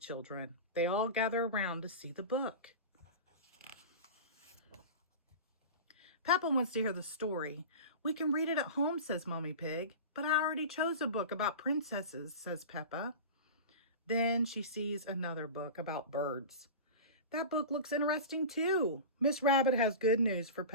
They all gather around to see the book. Peppa wants to hear the story. We can read it at home, says Mommy Pig. But I already chose a book about princesses, says Peppa. Then she sees another book about birds. That book looks interesting too. Miss Rabbit has good news for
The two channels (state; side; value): inverted; both; correlation -0.30